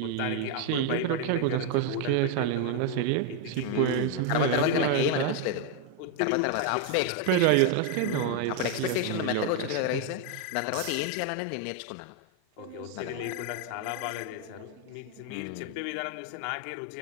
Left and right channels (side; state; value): both; different; correlation 0.01